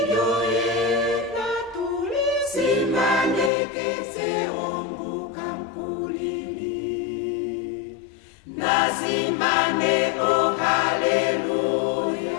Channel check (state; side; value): drops out; right; at 3.5 s